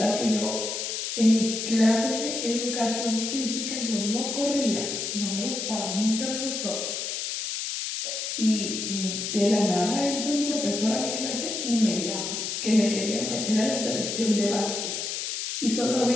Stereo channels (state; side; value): noise; left; hiss, 3 dB below the sound